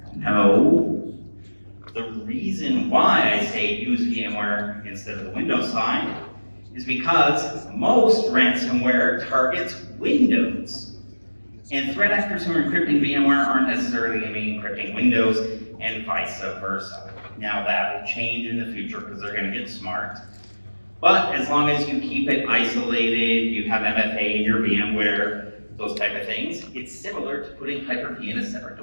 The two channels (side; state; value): both; inverted; correlation -1.00